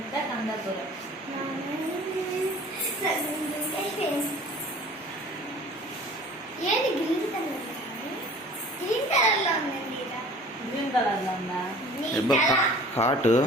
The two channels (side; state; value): both; normal; correlation 0.47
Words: ఏది green colour green colour లో ఉందండి. గ్రీన్ కలర్ లో ఉందా? హాట్